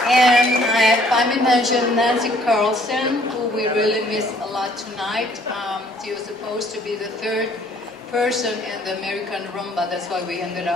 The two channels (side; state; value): both; normal; correlation 0.61